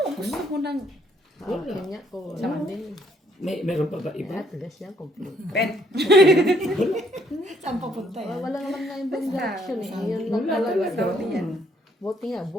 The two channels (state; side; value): normal; both; correlation 0.67